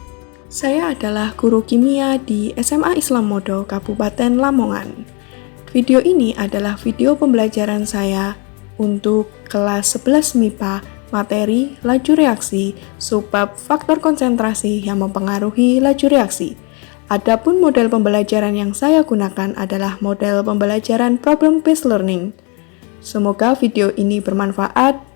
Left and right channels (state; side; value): quieter; right; 32.2 dB